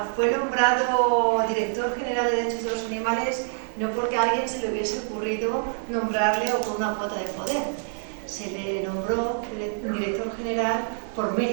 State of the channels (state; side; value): silent; left; digital silence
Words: fue nombrado director general de Derechos de los Animales no porque a alguien se le hubiese ocurrido nombrarle o con una cuota de poder. Se le nombró director general por